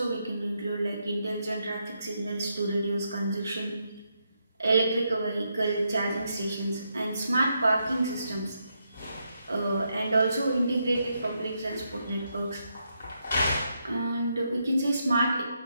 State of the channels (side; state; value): both; inverted; correlation -0.81